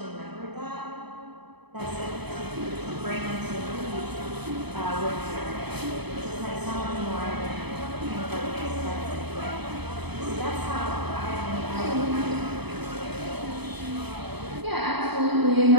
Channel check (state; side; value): late; left; 0.98 ms